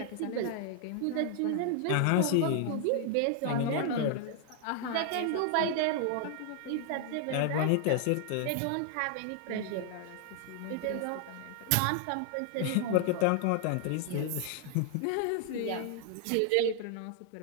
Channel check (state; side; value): different; both; correlation 0.00